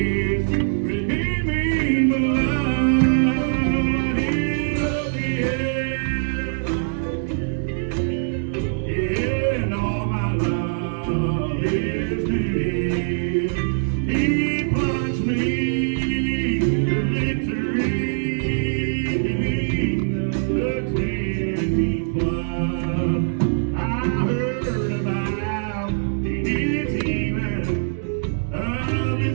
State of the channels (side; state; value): left; silent; digital silence